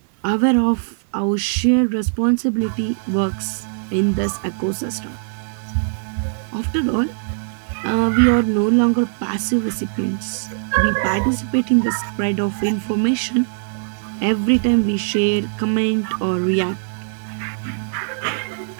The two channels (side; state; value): left; silent; 65 dB below the other